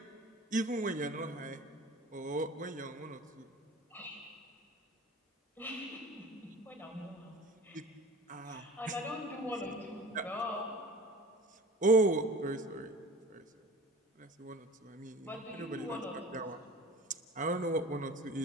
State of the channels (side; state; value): both; normal; correlation 0.40